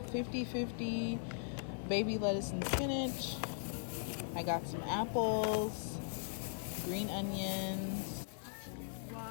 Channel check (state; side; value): silent; right; 52 dB below the other